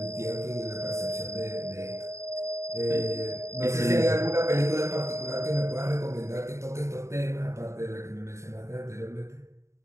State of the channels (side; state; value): left; late; 0.14 ms